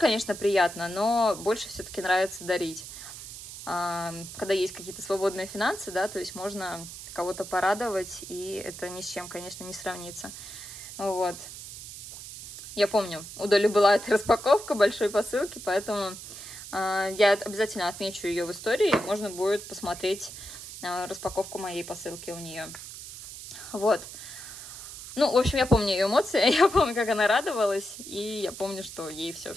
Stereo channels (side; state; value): right; noise; hiss, 12 dB below the sound